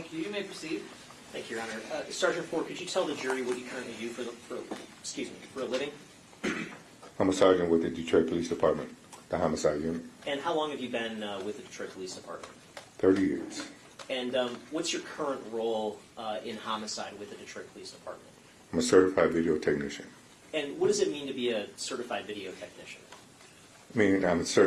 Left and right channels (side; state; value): both; identical; correlation 1.00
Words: you. You may proceed. Thank you, Your Honor. Sergeant Ford, could you tell the jury what you currently do for a living? I'm a sergeant with the Detroit Police Department, the homicide unit. And how long have you been with the Detroit Police Department? 30 years. And what's your current role in homicide with the Detroit Police Department? I'm a certified video technician. And what does it mean to be a certified video technician? I mean, I'm